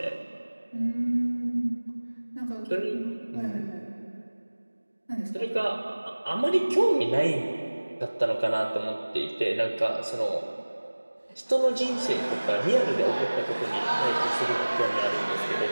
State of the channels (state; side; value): inverted; both; correlation -1.00